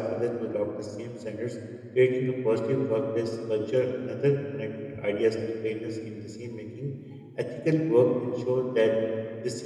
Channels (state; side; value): identical; both; correlation 1.00